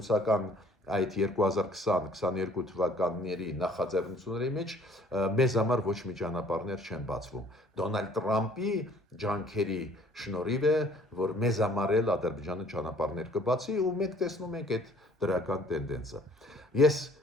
այդ 2020-22 թվականների նախաձեռնությունների մեջ մեզ համար ոչ մի ճանապարհներ չեն բացվում։ Դոնալդ Տրամպի ջանքերի շնորհիվ է, որ մեզ համար էլ Ադրբեջանը ճանապարհներ կբացի ու մենք տեսնում ենք այդ դրական տենդենսը։ Ես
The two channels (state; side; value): normal; both; correlation 0.56